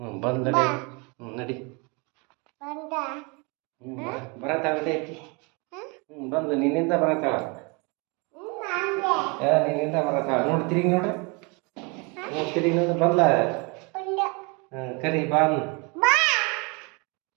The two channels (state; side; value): quieter; left; 30.5 dB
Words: ಬಂದ್ ನಡಿ. ನಡಿ ಬರತ್ತಾಳೆ ಐತಿ. ಬಂದು ನಿನ್ನಿಂದ ಬರತ್ತಾಳ. ನಿನ್ನಿಂದ ಬರತ್ತಾಳ. ನೋಡಿ ತಿರುಗಿ ನೋಡ್ರಿ. ತಿರುಗಿ ನೋಡಿ ಬಂದ್ಲ. ಕರಿ ಬಾನ್.